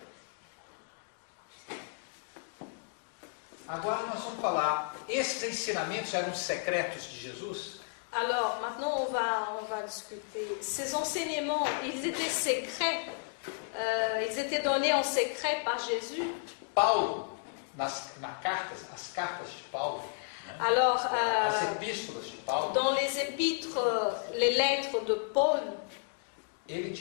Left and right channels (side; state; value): right; silent; digital silence